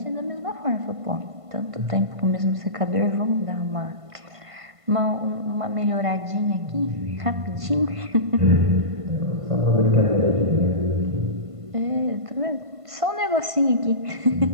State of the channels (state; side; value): late; left; 1.5 ms